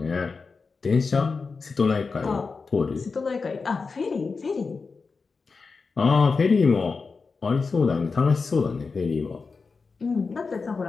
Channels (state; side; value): quieter; right; 4.6 dB